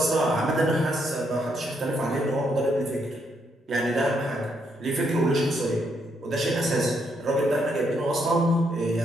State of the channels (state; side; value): normal; both; correlation 0.76